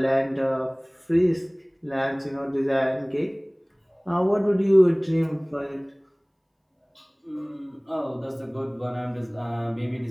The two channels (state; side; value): identical; both; correlation 1.00